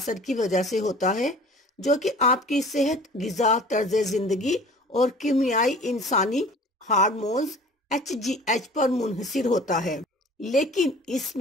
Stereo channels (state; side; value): normal; both; correlation 0.46